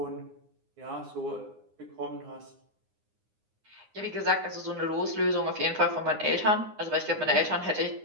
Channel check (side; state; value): left; late; 9.7 ms